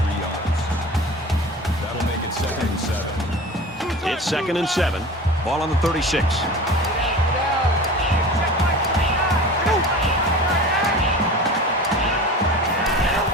yards. That'll make it 2nd and 7. It's 2nd and 7. Ball on the 36.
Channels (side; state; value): both; normal; correlation 0.36